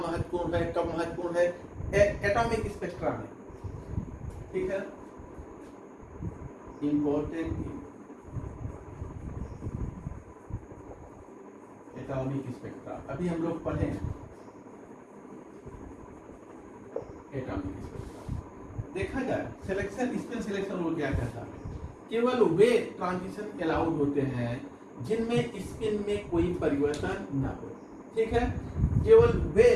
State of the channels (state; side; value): identical; both; correlation 1.00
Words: है, कब महत्वपूर्ण है, एटॉमिक स्पेक्ट्रा में, ठीक है। इंपॉर्टेंट एटॉमिक स्पेक्ट्रा अभी हम लोग पढ़े हैं। एटॉमिक स्पेक्ट्रा देखा जाए सिलेक्शन स्पिन सिलेक्शन रूल क्या कहता है, केवल वे ट्रांजिशन अलाउड होते हैं जिनमें स्पिन में कोई परिवर्तन न हो, ठीक है। केवल वे